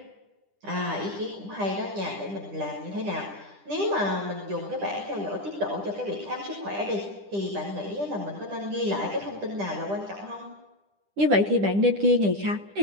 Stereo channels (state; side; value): late; left; 10 ms